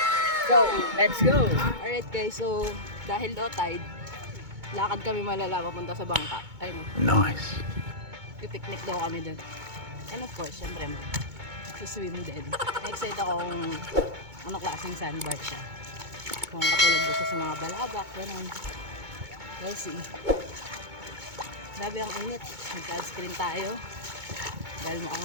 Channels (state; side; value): late; left; 2.2 ms